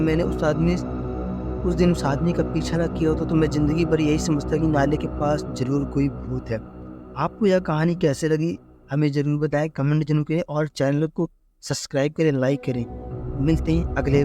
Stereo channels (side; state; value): both; identical; correlation 1.00